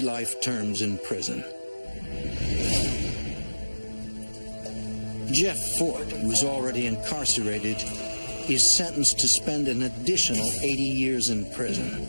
life terms in prison. Jeff Fort, who is already incarcerated, is sentenced to spend an additional 80 years in prison.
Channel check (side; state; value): both; inverted; correlation -1.00